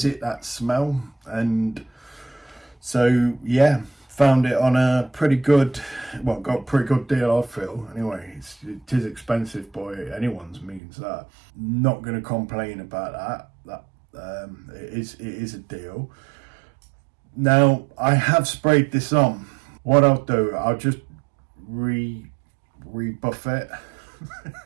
that smell, and so yeah, found it on a pretty good, well, got a pretty good deal, I feel. Anyway, it is expensive by anyone's means. That not going to complain about that. It is a deal. Now I have sprayed this on. What I'll do, I'll just rebuff it,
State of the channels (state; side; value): drops out; left; at 10.8 s